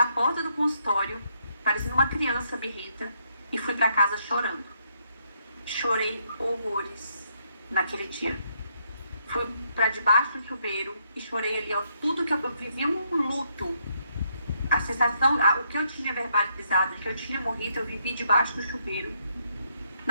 porta do consultório, parecendo uma criança birrenta, e fui pra casa chorando. Chorei horrores naquele dia. Fui pra debaixo do chuveiro e chorei ali, ó, tudo que eu vivi um luto. A sensação, o que eu tinha verbalizado, que eu tinha morrido, eu vivi debaixo do chuveiro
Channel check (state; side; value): inverted; both; correlation -0.74